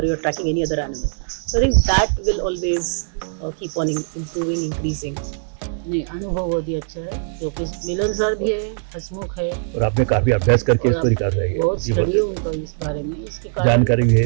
you're tracking any other animal. So I think that will always keep on improving, increasing. नहीं, अनुभव बहुत ही अच्छा है, क्योंकि मिलनसार भी है, हंसमुख है, और आपने काफी अभ्यास करके और इस पर कर रही है, बहुत ये स्टडी है उनका इस बारे में, इसके कारण जानकारी भी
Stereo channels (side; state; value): left; silent; 65 dB below the other